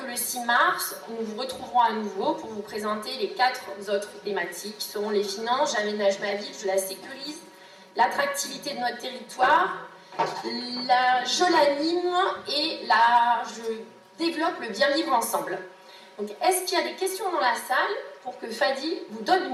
le 6 mars, nous vous retrouverons à nouveau pour vous présenter les 4 autres thématiques, qui seront les finances, j'aménage ma ville, je la sécurise, l'attractivité de notre territoire, je l'anime et je développe le bien vivre ensemble. Donc, est-ce qu'il y a des questions dans la salle pour que Fadi vous donne le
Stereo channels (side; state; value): both; identical; correlation 1.00